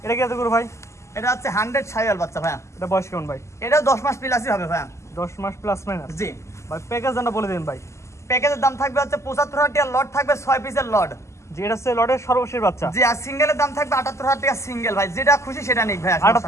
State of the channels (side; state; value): right; late; 0.13 ms